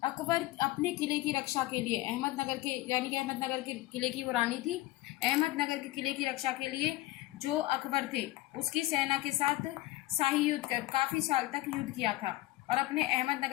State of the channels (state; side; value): quieter; right; 17.9 dB